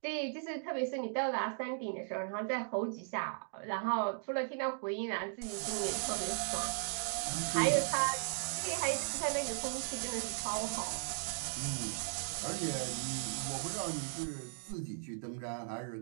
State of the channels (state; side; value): silent; left; digital silence